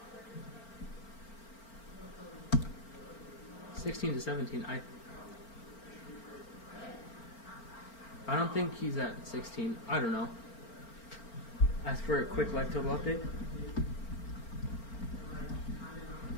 (16 to 17). I don't think he's at 16. I don't know. As for a quick life total update.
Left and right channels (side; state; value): right; late; 4.4 ms